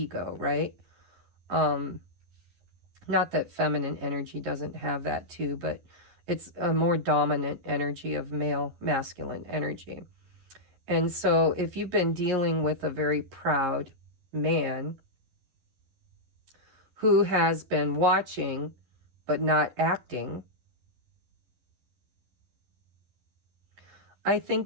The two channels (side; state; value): left; late; 11 ms